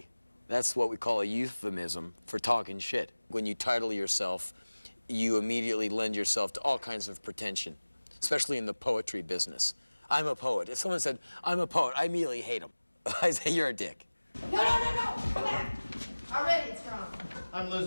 That's what we call a euphemism for talking shit. When you title yourself, you immediately lend yourself to all kinds of pretension, especially in the poetry business. I'm a poet. If someone said, I'm a poet, I immediately hate them. I say, you're a dick. No, come back. Already it's wrong. I'm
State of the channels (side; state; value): both; inverted; correlation -1.00